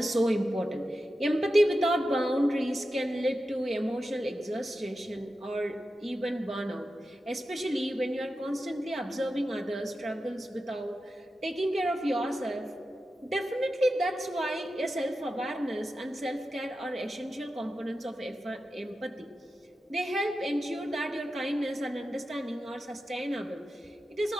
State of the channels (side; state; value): both; normal; correlation 0.91